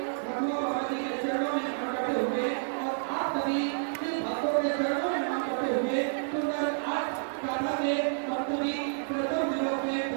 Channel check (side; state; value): left; silent; 58 dB below the other